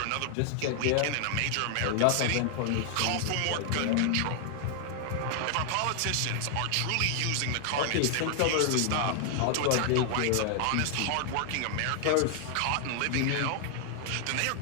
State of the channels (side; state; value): both; different; correlation 0.00